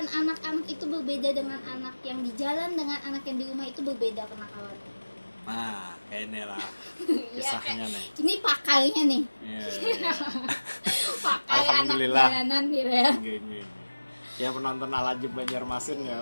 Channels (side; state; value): both; inverted; correlation -1.00